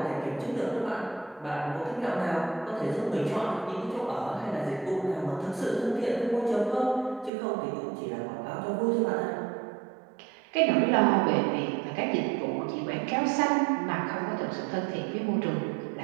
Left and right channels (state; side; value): drops out; left; at 7.3 s